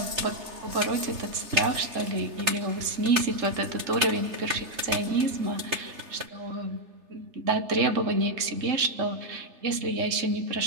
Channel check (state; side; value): late; left; 3.3 ms